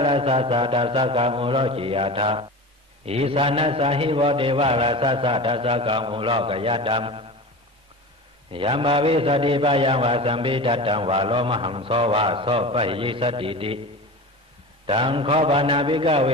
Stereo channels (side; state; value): both; normal; correlation 0.31